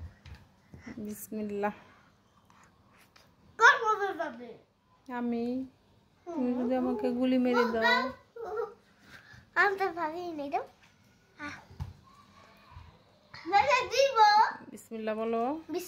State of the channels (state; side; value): identical; both; correlation 1.00